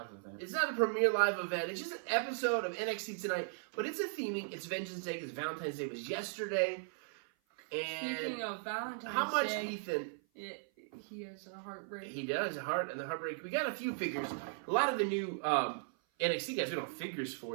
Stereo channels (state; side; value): silent; left; 53 dB below the other